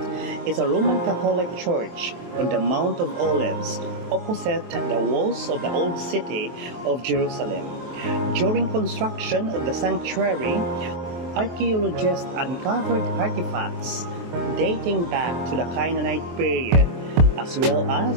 is a Roman Catholic church on the Mount of Olives, opposite the walls of the old city of Jerusalem. During construction of the sanctuary, archaeologists uncovered artifacts dating back to the Canaanite period, as well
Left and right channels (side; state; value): left; late; 23 ms